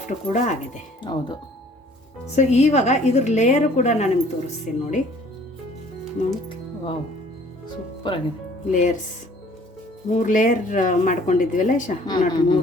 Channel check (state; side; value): normal; both; correlation 0.55